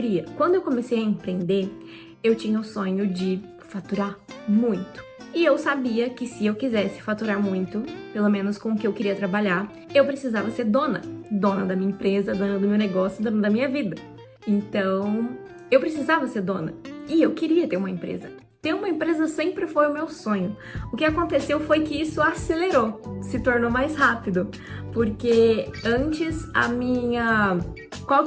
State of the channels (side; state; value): both; identical; correlation 1.00